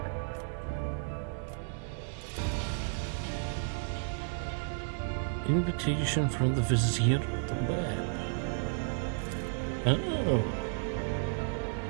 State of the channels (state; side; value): silent; left; 56 dB below the other